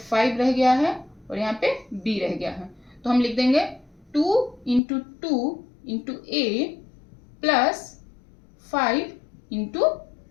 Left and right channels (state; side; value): drops out; right; at 4.8 s